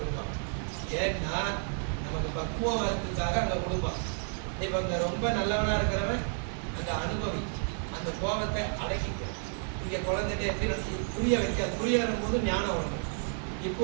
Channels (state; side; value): silent; left; 57 dB below the other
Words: கொடுப்பான். ஏன்னா நமக்கு பக்குவம் வரதுக்காக அங்கே கொடுப்பான். இப்போ இந்த ரொம்ப நல்லவனா இருக்கிறவன் அந்த அனுபவி அந்த கோபத்தை அடக்கிக்க. இங்கே குழந்தைகிட்ட எப்படி புரிய வைக்காது. புரிய வரும்போது ஞானம் வரணும். இப்போ